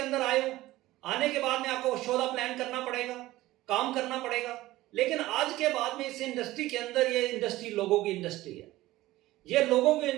आए हो, आने के बाद में आपको शोधा प्लान करना पड़ेगा, काम करना पड़ेगा। लेकिन आज के बाद में इस इंडस्ट्री के अंदर, ये इंडस्ट्री लोगों की इंडस्ट्री है। ये लोगों की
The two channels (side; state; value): left; quieter; 17.0 dB